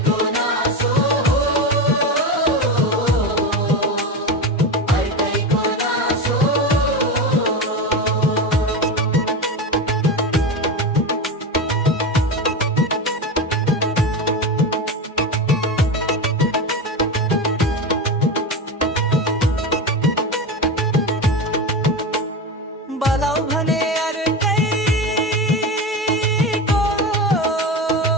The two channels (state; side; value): normal; both; correlation 0.20